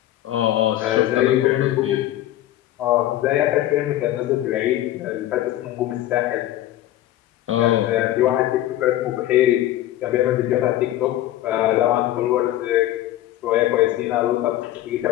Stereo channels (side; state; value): right; quieter; 13.9 dB